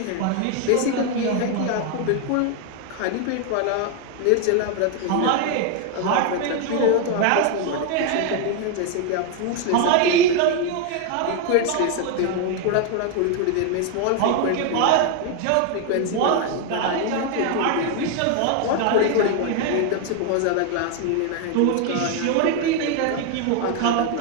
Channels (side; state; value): both; different; correlation 0.01